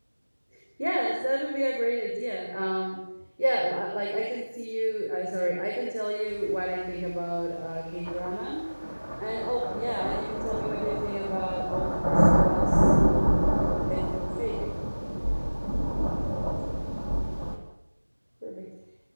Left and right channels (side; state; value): both; inverted; correlation -1.00